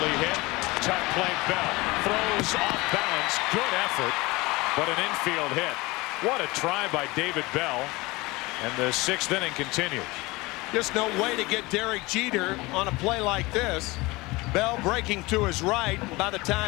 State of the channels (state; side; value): quieter; right; 22.5 dB